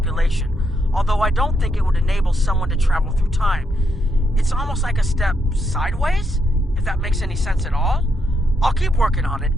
although I don't think it would enable someone to travel through time. It's almost like a step sideways, if that makes any sense at all. I'll keep working on it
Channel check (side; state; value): both; normal; correlation 0.79